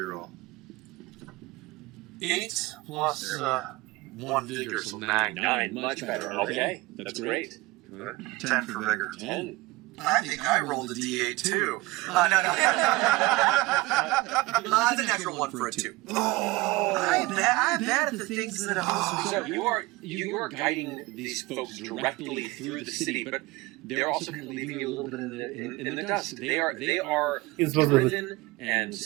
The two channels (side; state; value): left; quieter; 20.8 dB